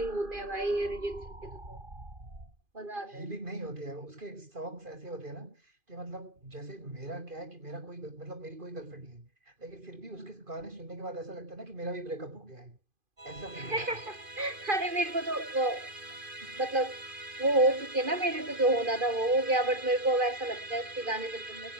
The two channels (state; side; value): late; left; 2.5 ms